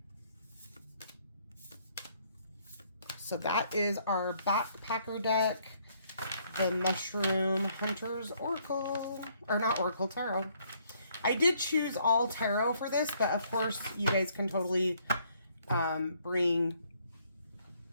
So that is our backpacker deck, the Mushroom Hunter's Oracle, or not Oracle, Tarot. I did choose all tarot for this, but of course you guys can totally bring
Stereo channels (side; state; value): both; inverted; correlation -0.67